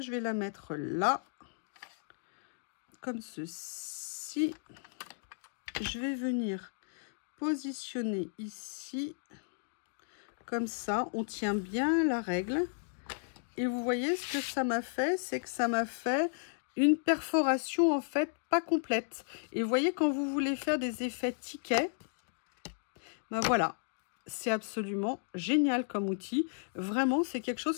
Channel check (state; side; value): silent; right; digital silence